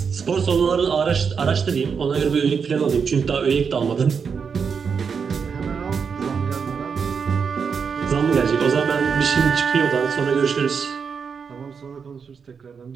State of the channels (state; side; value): quieter; left; 6.1 dB